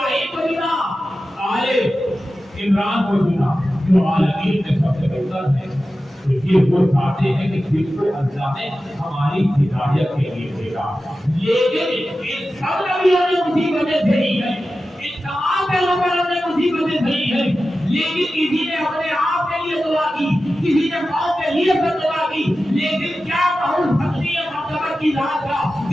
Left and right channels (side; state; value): both; normal; correlation 0.93